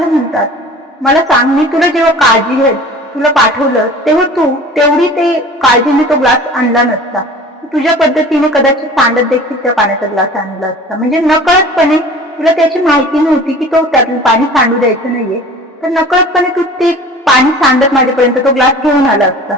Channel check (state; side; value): normal; both; correlation 0.43